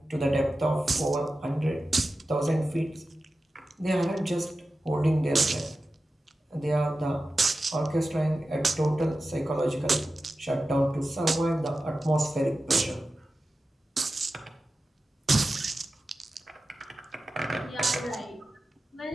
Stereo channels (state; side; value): normal; both; correlation 0.93